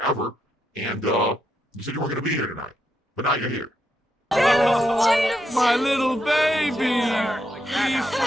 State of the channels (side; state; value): both; normal; correlation 0.80